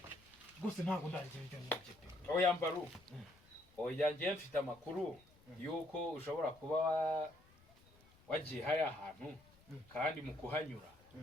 gusa ntabwo ndagira ibyo nibye oya Mbaru oya ngiye mfite amakuru yuko ushobora kuba wagiye hariya ahantu kandi mu kuhanyura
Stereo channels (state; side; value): noise; left; rumble, 28 dB below the sound